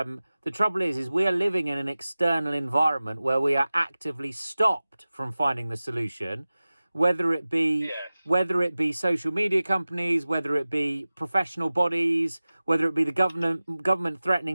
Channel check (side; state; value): both; inverted; correlation -0.97